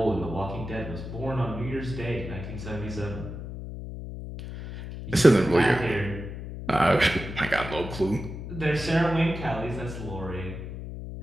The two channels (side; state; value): left; noise; hum, 9 dB below the sound